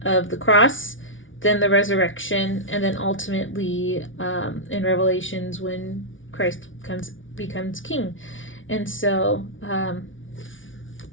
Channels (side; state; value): right; late; 0.57 ms